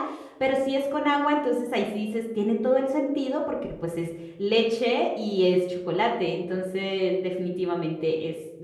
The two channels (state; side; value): identical; both; correlation 1.00